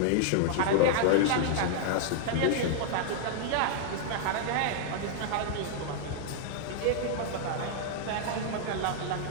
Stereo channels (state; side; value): different; both; correlation -0.01